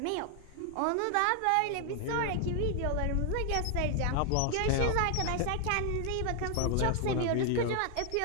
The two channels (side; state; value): both; different; correlation 0.00